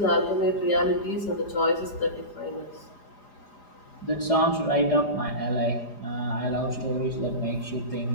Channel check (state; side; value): late; right; 4.9 ms